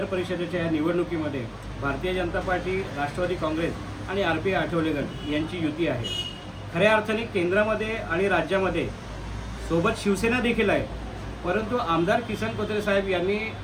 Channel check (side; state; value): both; identical; correlation 1.00